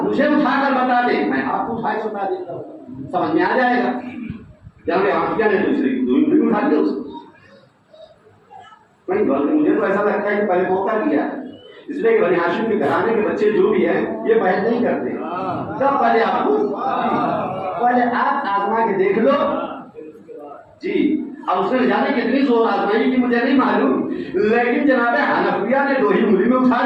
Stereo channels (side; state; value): both; identical; correlation 1.00